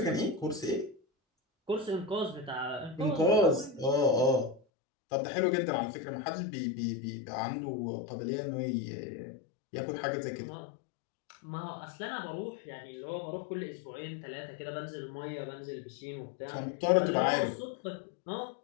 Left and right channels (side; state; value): right; drops out; at 4.6 s